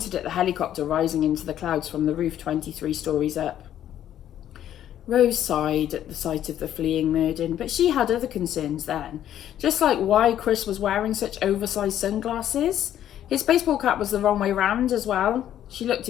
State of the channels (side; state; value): right; quieter; 11.2 dB